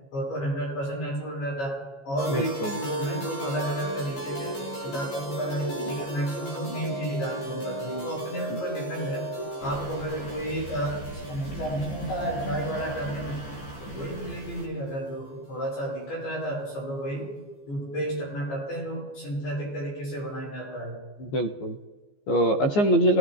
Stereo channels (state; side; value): late; right; 14 ms